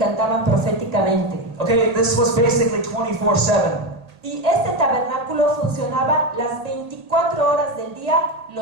proféticamente. Okay, this was basically 24/7. Y este tabernáculo funcionaba las 24 horas del día,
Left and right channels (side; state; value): left; late; 1.8 ms